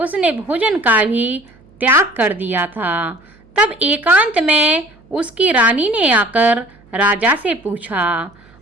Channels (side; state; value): right; noise; hum, 28 dB below the sound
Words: भोजन का भी त्याग कर दिया था। तब एकांत में उसकी रानी ने आकर राजा से पूछा।